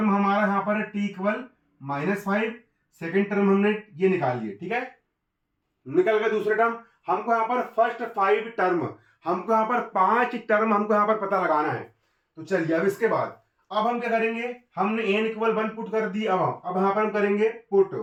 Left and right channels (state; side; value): identical; both; correlation 1.00